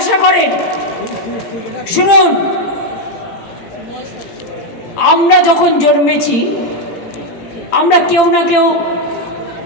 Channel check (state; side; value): late; right; 18 ms